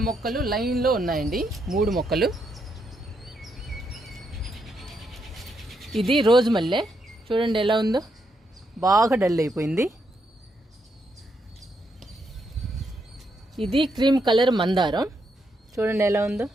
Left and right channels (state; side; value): normal; both; correlation 0.79